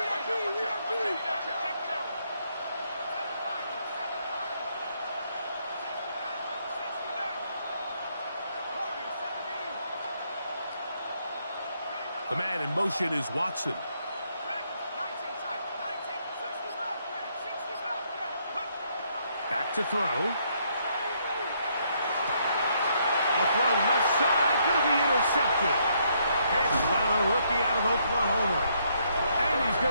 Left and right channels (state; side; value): inverted; both; correlation -0.72